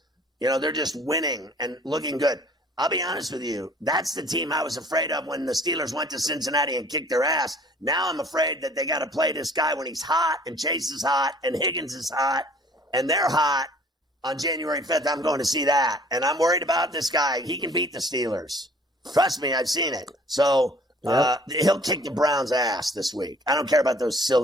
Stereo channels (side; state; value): both; normal; correlation 0.53